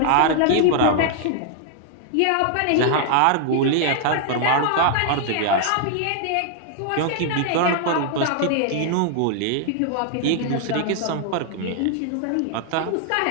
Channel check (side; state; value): both; different; correlation 0.00